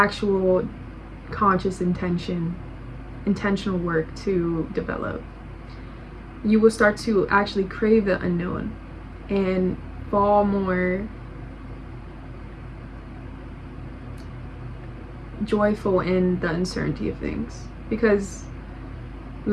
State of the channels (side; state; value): both; identical; correlation 1.00